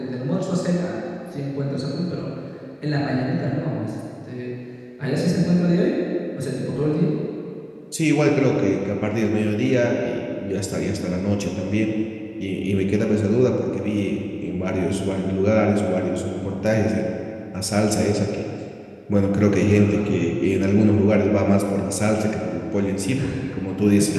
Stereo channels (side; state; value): both; identical; correlation 1.00